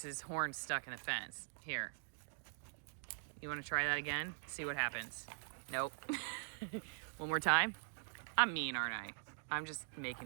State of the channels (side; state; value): left; silent; digital silence